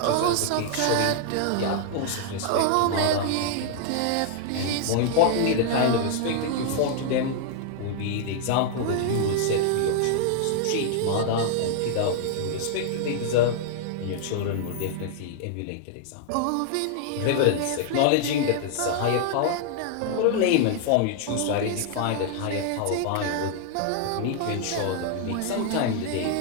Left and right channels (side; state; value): both; different; correlation -0.01